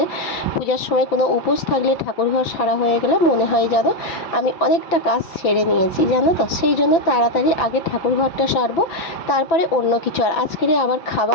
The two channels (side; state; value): right; late; 6.0 ms